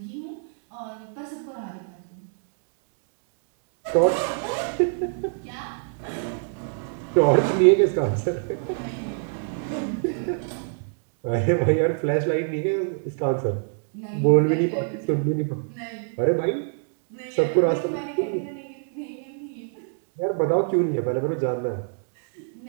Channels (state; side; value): silent; left; digital silence